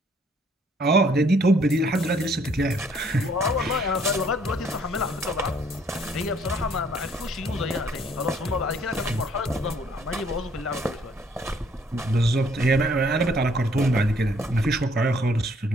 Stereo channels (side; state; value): both; normal; correlation 0.63